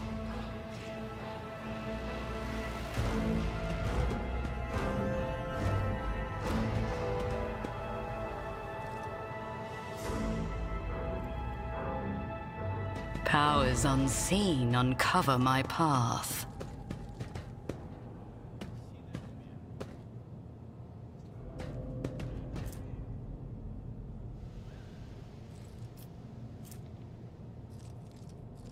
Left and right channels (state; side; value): identical; both; correlation 1.00